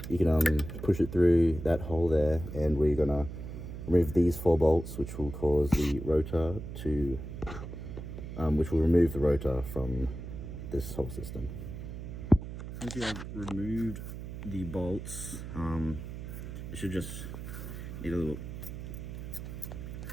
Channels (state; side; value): noise; right; hum, 9 dB below the sound